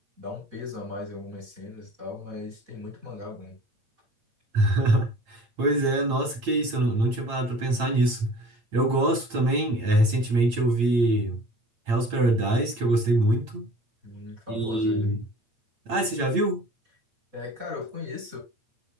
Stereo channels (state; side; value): late; left; 8.8 ms